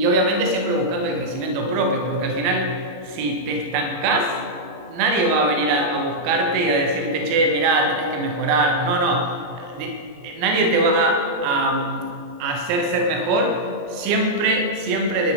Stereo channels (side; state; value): left; late; 18 ms